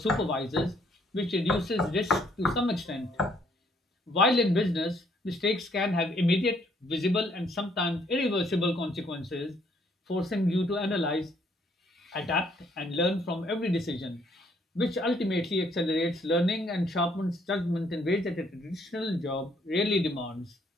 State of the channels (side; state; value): both; normal; correlation 0.67